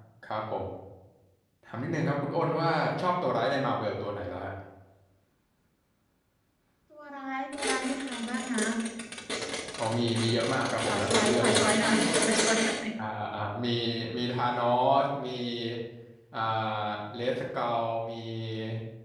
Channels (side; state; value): both; identical; correlation 1.00